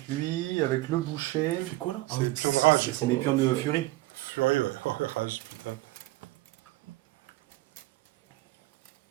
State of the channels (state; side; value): quieter; left; 18.4 dB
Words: lui, avec le boucher. Tu fais quoi là Ah oui, c'est rage. C'est mes pions de furie. Furie, ouais. Oh, rage, putain.